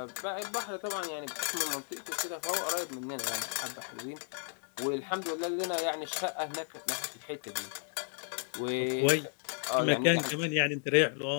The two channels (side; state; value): right; silent; 55 dB below the other